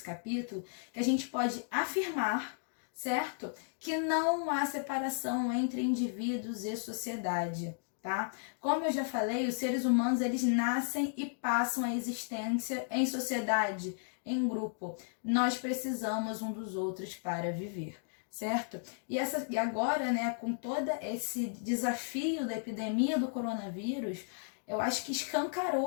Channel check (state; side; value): silent; right; digital silence